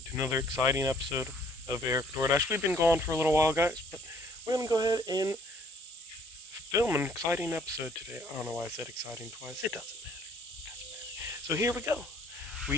to another exciting episode of EricDoordash. We've been gone for a little while, guys, but we're going to go ahead and film an exciting episode today. I don't know why I said exciting twice. It doesn't matter. So here we go.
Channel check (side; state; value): both; normal; correlation 0.60